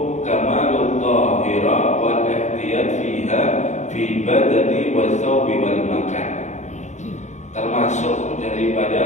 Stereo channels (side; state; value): right; late; 0.34 ms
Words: kamalul tahira wal ihtiyat fiha fi badani wa thawbi wal makan. Termasuk